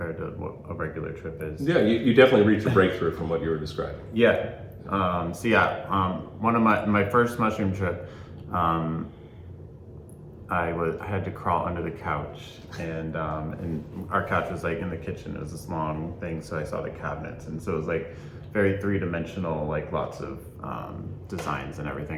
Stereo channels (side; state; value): both; identical; correlation 1.00